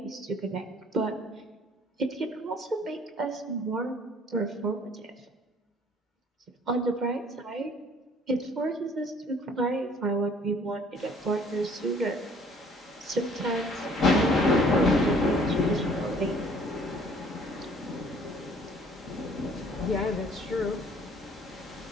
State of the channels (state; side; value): normal; both; correlation 0.56